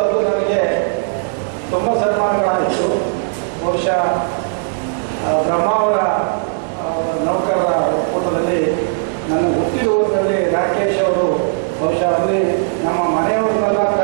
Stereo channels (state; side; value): silent; left; 62 dB below the other